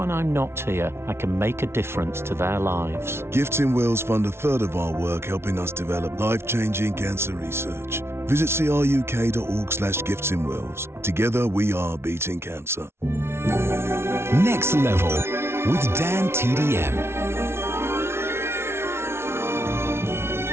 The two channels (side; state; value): left; late; 0.12 ms